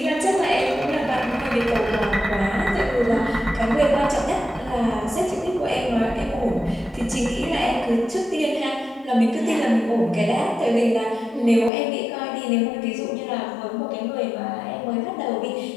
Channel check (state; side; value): drops out; right; at 11.7 s